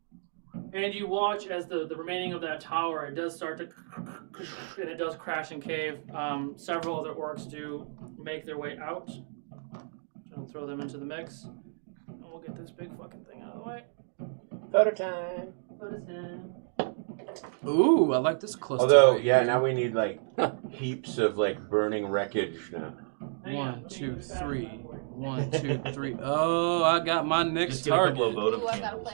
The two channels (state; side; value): silent; left; digital silence